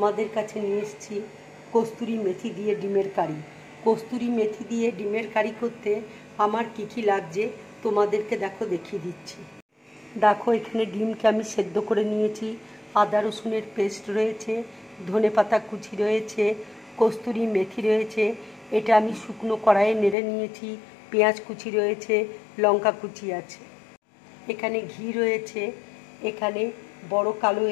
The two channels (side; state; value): right; drops out; at 20.2 s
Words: কাছে নিয়ে এসেছি। কস্তুরি মেথি দিয়ে ডিমের কারি। কস্তুরি মেথি দিয়ে ডিমের কারি করতে আমার কী কী লাগছে তোমাদেরকে দেখিয়ে দিচ্ছি। দেখো, এখানে ডিমকে আমি সেদ্ধ করে নিয়েছি, আদা রসুনের পেস্ট রয়েছে, ধনেপাতা কুচি রয়েছে, কস্তুরি মেথি রয়েছে, এটা আমি শুকনো কড়াইয়ে নেড়ে নিয়েছি, পেঁয়াজ কুচি রয়েছে, লঙ্কা কুচি আছে, এখানে ঘি রয়েছে, এখানে বড় কালো